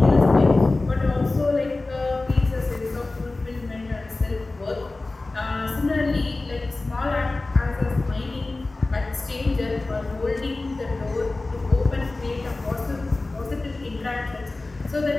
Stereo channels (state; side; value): quieter; right; 3.2 dB